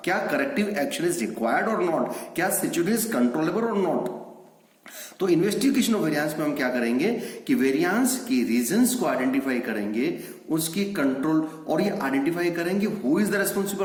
क्या करेक्टिव एक्शन इज रिक्वायर्ड और नॉट, क्या सिचुएशन इज कंट्रोलेबल और नॉट। तो इन्वेस्टिगेशन ऑफ वेरिएंस में हम क्या करेंगे कि वेरिएंस की रीजंस को आइडेंटिफाई करेंगे, उसकी कंट्रोल, और ये आइडेंटिफाई करेंगे हु इज द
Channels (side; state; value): both; identical; correlation 1.00